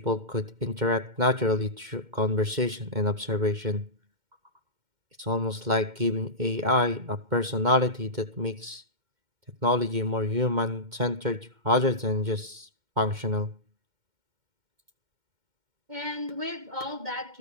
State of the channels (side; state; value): left; late; 2.1 ms